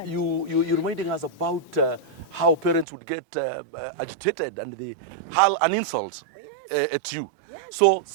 You're reminding us about how parents would get agitated and they hurl an insult Oh, yes. at you. Yes. So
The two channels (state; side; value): drops out; left; at 2.9 s